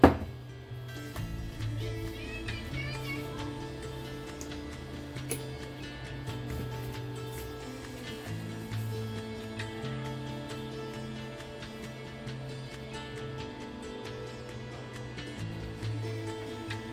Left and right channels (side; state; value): both; identical; correlation 1.00